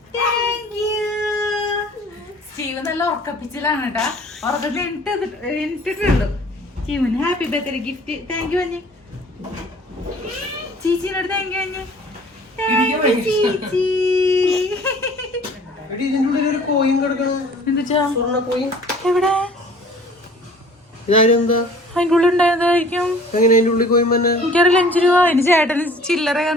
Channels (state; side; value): normal; both; correlation 0.50